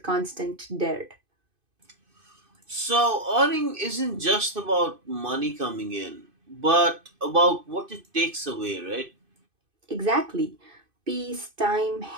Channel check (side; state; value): left; late; 2.5 ms